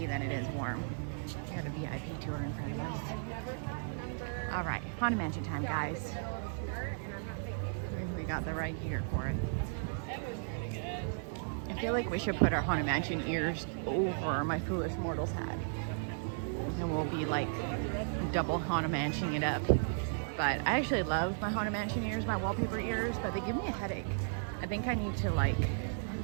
than it is warm. We got a VIP tour in front of us. All right, Haunted Mansion time, guys. We got the right gear for it. I feel like we should put our Haunted Mansion ears over my Foolish Mortals hat. And we'll be like double Haunted Mansioning it up. But I actually love my Haunted Mansion ears, my wallpaper ears, but they give me a headache. I think I need to like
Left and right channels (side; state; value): left; silent; digital silence